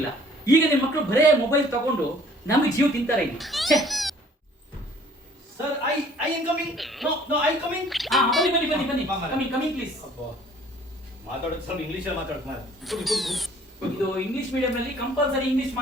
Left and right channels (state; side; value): normal; both; correlation 0.55